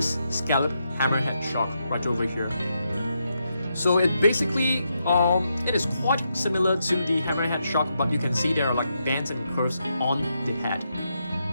scallop hammerhead shark right over here. So it basically, it is quite similar to the hammerhead shark, but you can see there are like bands and curves on the head,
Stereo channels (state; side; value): inverted; both; correlation -0.82